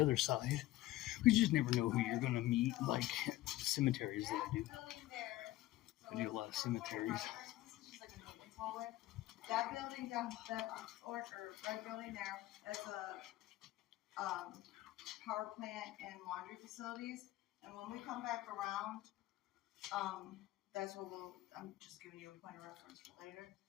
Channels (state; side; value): quieter; right; 16.2 dB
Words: side. You just never know who you're going to meet, like cemeteries that I do. I do a lot of cemeteries. That building down, that orange or red building there, that's a power plant and laundry facilities. And when we come back around, that's what I'm just giving you a point of reference for later.